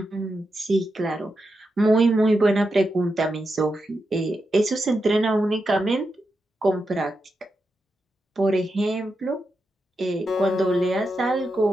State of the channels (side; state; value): both; normal; correlation 0.87